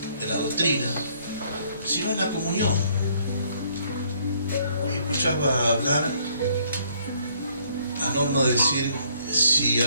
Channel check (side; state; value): both; inverted; correlation -0.65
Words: en la doctrina, sino en la comunión. Escuchaba hablar a Norma decir, si